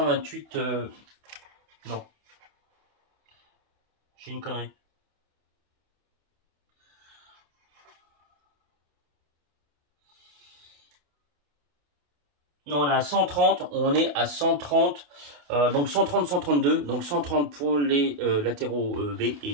Non. J'ai une connerie. Non, on est à 130, on est à 130, donc 130, 132, donc 130 pour les latéraux B et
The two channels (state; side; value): late; left; 28 ms